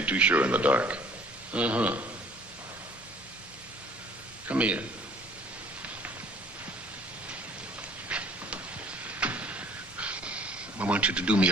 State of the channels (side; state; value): both; normal; correlation 0.53